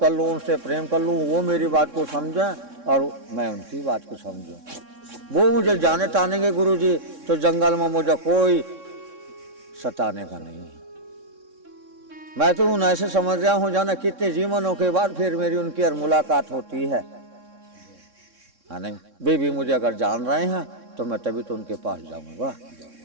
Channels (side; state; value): left; late; 3.6 ms